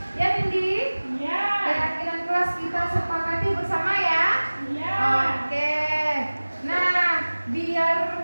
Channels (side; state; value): both; inverted; correlation -1.00